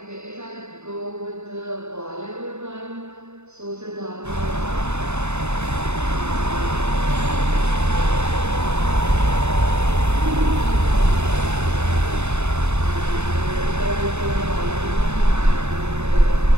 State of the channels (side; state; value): left; late; 0.82 ms